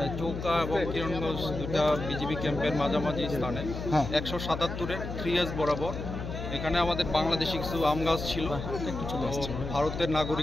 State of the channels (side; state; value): left; noise; hum, 6 dB below the sound